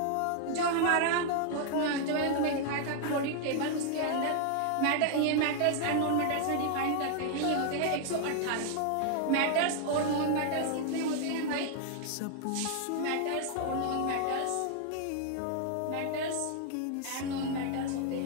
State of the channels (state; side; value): different; both; correlation 0.00